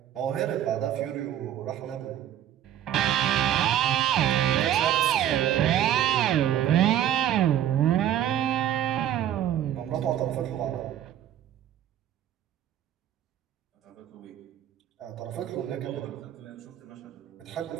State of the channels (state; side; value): quieter; left; 11.2 dB